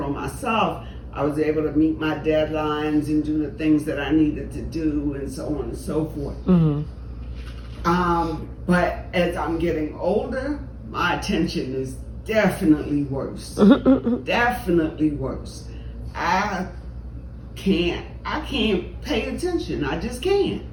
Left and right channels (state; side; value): identical; both; correlation 1.00